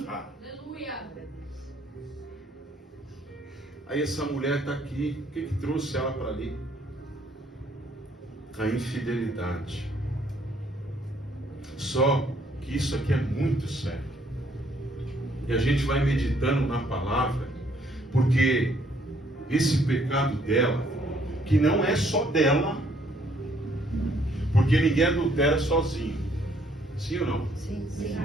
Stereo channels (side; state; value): both; normal; correlation 0.66